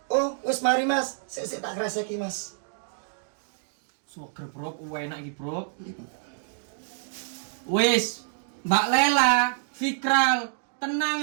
Oh, wis mari Mas. Sik tak kreseki Mas. Soger bro, enak iki bro. Wis, Mbak Lela, Fikral, tenang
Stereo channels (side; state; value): left; silent; digital silence